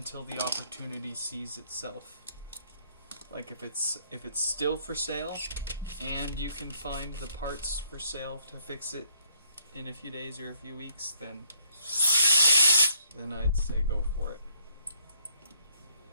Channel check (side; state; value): both; inverted; correlation -0.67